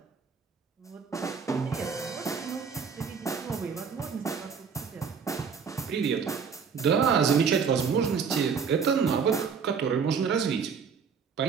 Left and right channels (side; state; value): left; quieter; 6.2 dB